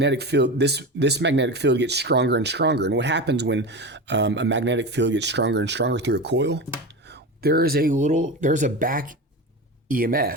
field, this magnetic field gets stronger and stronger. And what happens when a magnetic field gets stronger and stronger through a coil? There's a back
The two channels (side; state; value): both; normal; correlation 0.25